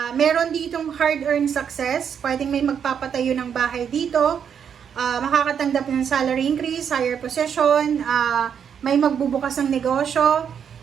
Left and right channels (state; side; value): quieter; left; 7.8 dB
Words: meron ditong hard-earned success, pwedeng may magpapatayo ng bahay dito, makakatanggap ng salary increase, higher position, may magbubukas ng negosyo,